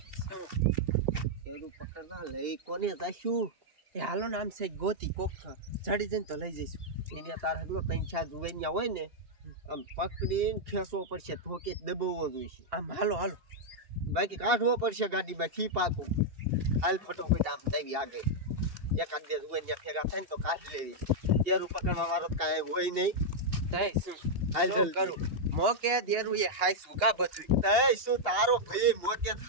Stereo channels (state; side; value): late; left; 2.9 ms